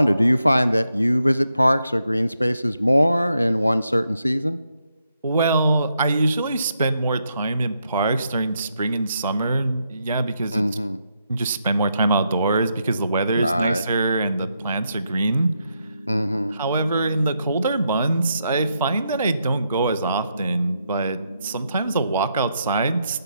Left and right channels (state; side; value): inverted; both; correlation -0.81